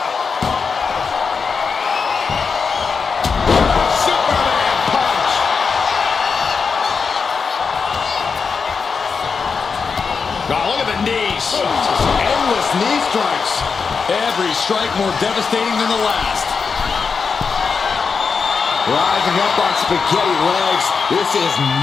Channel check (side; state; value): right; quieter; 5.4 dB